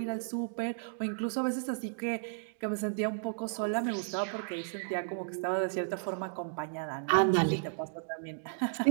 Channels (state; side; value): silent; left; digital silence